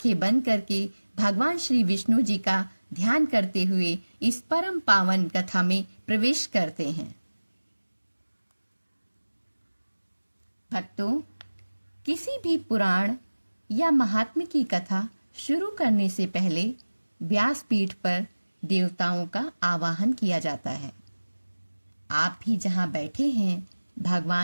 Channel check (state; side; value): inverted; both; correlation -1.00